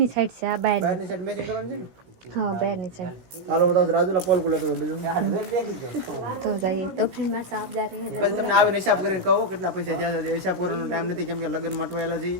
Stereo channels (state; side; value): late; left; 17 ms